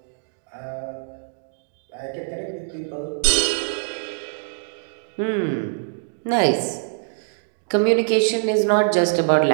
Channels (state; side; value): silent; left; digital silence